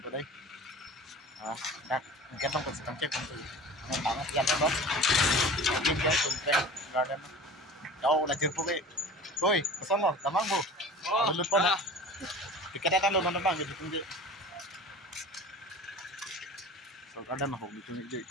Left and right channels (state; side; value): normal; both; correlation 0.38